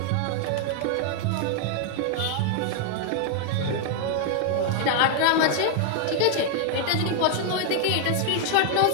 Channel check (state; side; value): different; both; correlation 0.00